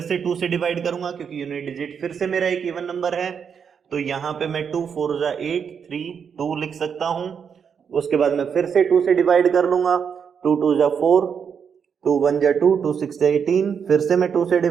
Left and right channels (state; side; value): quieter; left; 7.0 dB